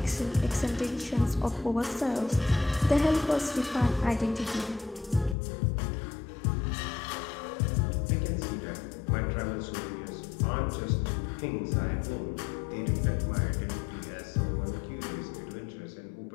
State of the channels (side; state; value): right; drops out; at 5.4 s